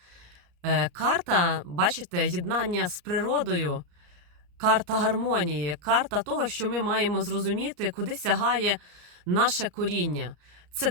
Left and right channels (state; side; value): late; left; 34 ms